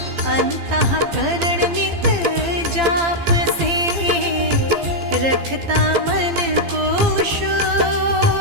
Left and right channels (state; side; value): late; left; 15 ms